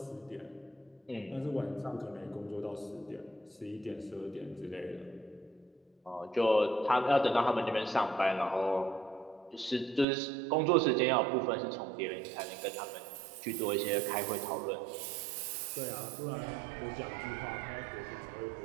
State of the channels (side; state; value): left; drops out; at 10.1 s